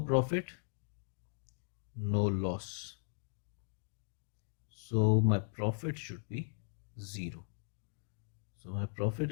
no loss. So my profit should be 0. So my profit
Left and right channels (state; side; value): silent; right; digital silence